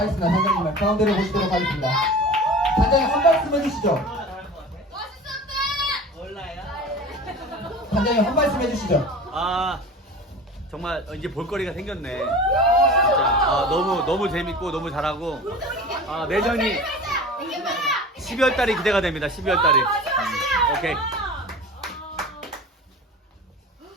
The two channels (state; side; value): normal; both; correlation 0.36